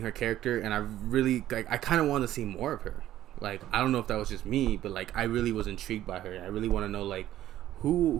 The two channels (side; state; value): left; quieter; 13.1 dB